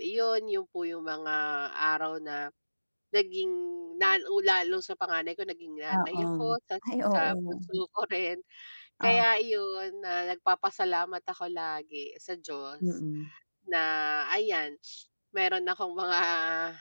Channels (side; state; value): both; inverted; correlation -1.00